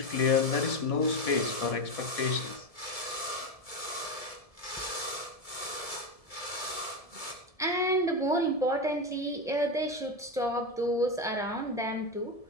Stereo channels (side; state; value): right; late; 1.7 ms